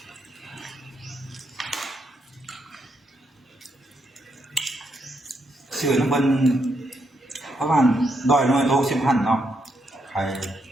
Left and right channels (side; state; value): both; normal; correlation 0.79